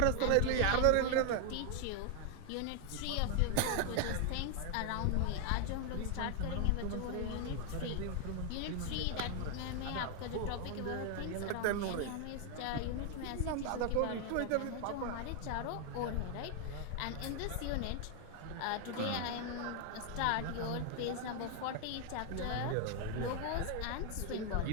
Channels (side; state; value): both; different; correlation 0.00